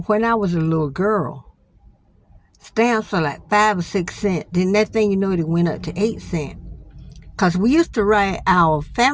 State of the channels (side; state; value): both; identical; correlation 1.00